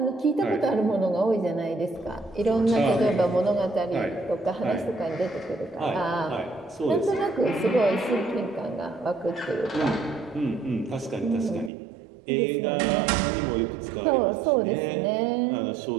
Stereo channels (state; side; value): drops out; left; at 11.7 s